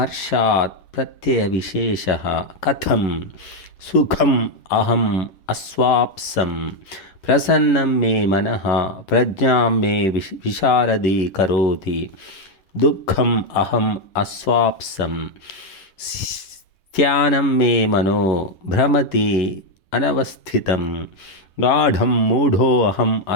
प्रत्ययविशेषः कथं सुखम् अहम् अस्वाप्सं प्रसन्नं मे मनः प्रज्ञां मे विशारदी करोति। दुःखम् अहम् अस्वाप्सं स्त्यानं मे मनो भ्रमति अनवस्थितं। गाढं मूढोऽहम्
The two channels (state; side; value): late; right; 10 ms